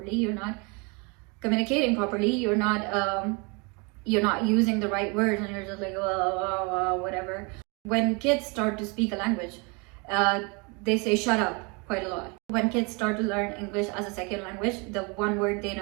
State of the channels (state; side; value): quieter; left; 30.8 dB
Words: you're not communicating properly, you're not using the right words, and you're just like whatever. When kids start to speak a language, they say shut up quite a lot. When kids start to learn English as a second language, the one word they